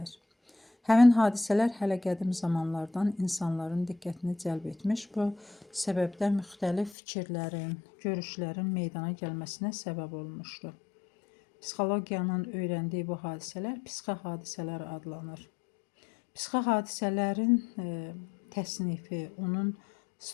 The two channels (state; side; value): drops out; right; at 7.0 s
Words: Həmin hadisələr hələ qədim zamanlardan insanların diqqətini cəlb etmiş, bu səbəbdən müxtəlif fikirlərin, görüşlərin meydana gəlməsinə səbəb olmuşdur. Psixologiyanın öyrəndiyi bu hadisələr psixi hadisələr adlanır. Psixi hadisələrin təsnifi, onun